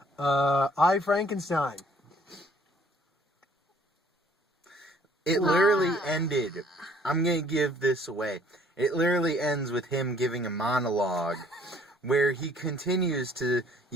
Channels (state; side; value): normal; both; correlation 0.59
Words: I Frankenstein. It literally ended. I'm going to give this away. It literally ends with him giving a monologue where he continues to